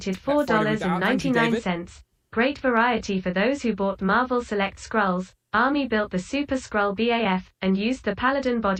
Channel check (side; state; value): both; identical; correlation 1.00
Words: $4.99. Great variety for those who bought Marvel Select Skrulls. Army built the Super Skrull BAF and used the Paladin